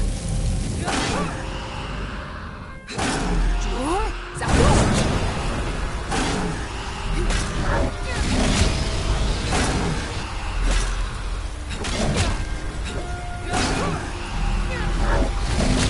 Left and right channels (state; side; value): identical; both; correlation 1.00